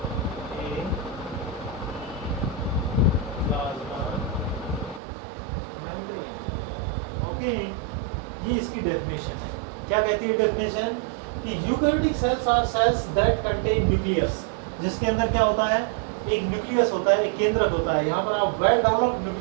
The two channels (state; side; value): drops out; left; at 5.0 s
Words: a plasma membrane। Okay, ये इसकी डेफिनेशन है। क्या कहती है डेफिनेशन कि eukaryotic cells are cells that contain nucleus, जिसके अंदर क्या होता है, एक न्यूक्लियस होता है, एक केंद्रक होता है। यहाँ पर आप वेल डेवलप्ड